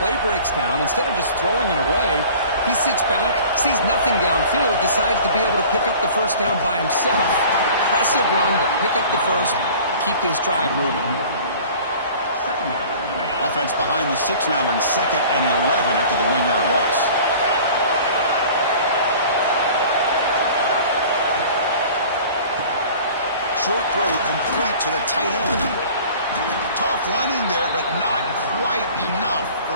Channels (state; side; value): inverted; both; correlation -0.45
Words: Play breaks down. Instead of just throwing it away, he sits back, sees nothing downfield, decides to be able to pick up the first down by himself. Impressive run to pick up the first, keep this drive moving. Offense behind the 6 now in 2nd and 11 after the 1-yard loss. Short throw complete to the tight end. Tough running there, but not quite enough